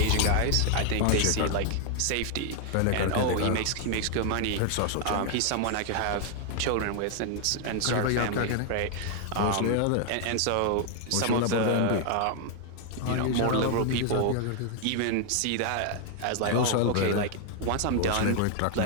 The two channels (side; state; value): both; different; correlation 0.00